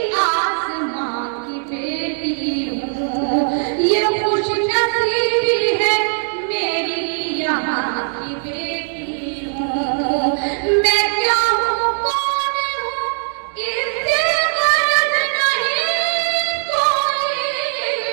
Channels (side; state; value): left; silent; digital silence